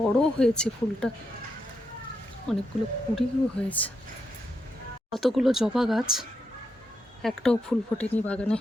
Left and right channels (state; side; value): normal; both; correlation 0.83